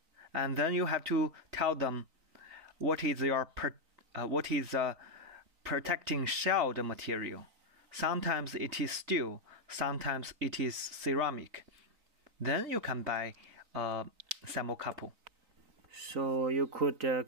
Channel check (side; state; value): left; late; 3.9 ms